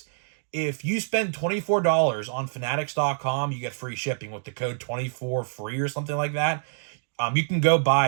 If you spend $24 on Fanatics.com, you get free shipping with the code 24FREE or something like that. You can go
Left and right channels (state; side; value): silent; left; digital silence